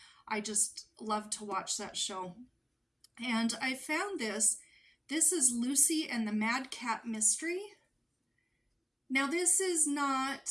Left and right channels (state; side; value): identical; both; correlation 1.00